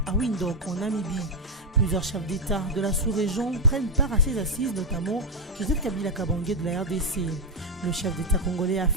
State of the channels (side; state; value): both; normal; correlation 0.04